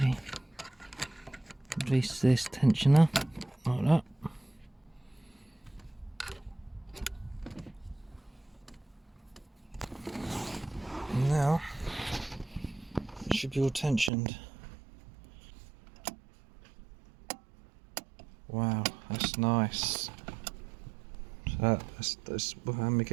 Release this tensioner, like that. And now, it should be all tensioned. Wow, that's nice. That's how many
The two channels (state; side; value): drops out; left; at 14.1 s